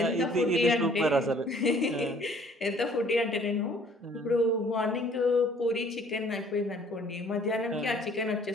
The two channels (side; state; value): both; normal; correlation 0.57